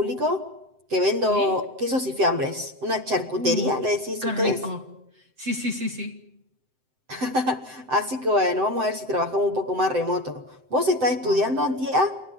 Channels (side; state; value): left; late; 7.8 ms